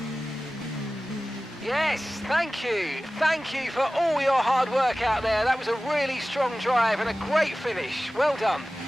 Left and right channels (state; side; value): normal; both; correlation 0.97